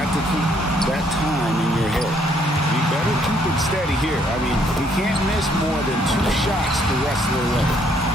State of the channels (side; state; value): both; normal; correlation 0.68